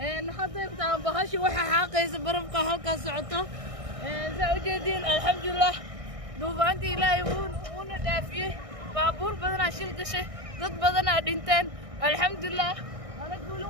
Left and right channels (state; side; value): late; left; 1.6 ms